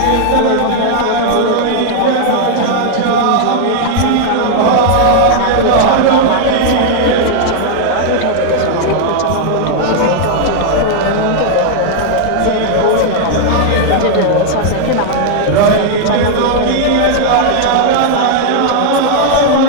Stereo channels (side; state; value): both; different; correlation 0.00